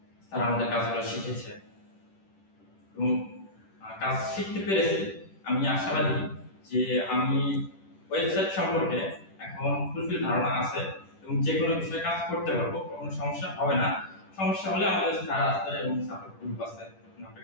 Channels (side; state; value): right; late; 10 ms